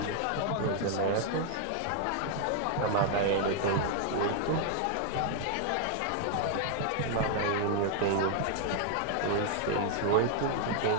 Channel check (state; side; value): different; both; correlation 0.00